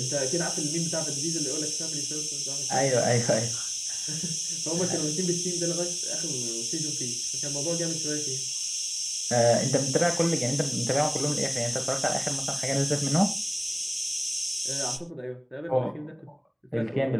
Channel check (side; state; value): both; identical; correlation 1.00